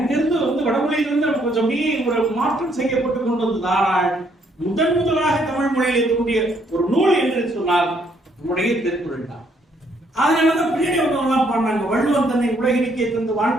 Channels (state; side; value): normal; both; correlation 0.69